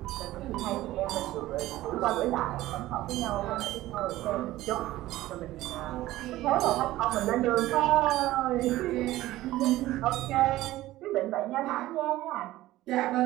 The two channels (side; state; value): left; quieter; 16.1 dB